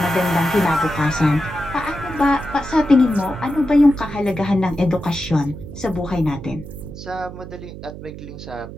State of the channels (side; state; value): right; noise; hum, 12 dB below the sound